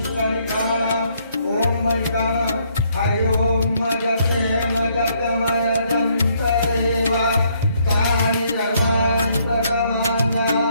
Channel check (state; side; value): inverted; both; correlation -0.69